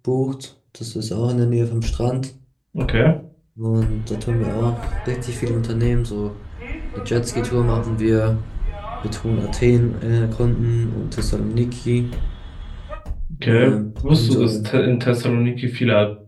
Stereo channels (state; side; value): identical; both; correlation 1.00